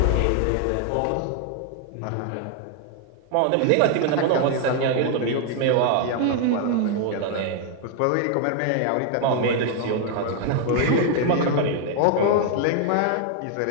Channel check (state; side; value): different; both; correlation 0.00